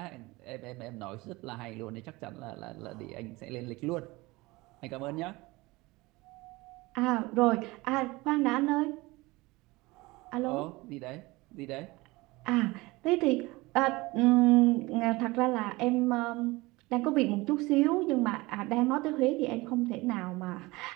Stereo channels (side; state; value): left; quieter; 22.0 dB